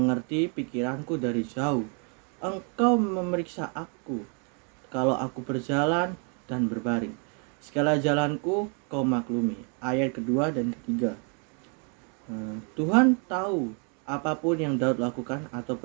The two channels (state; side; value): quieter; left; 38.3 dB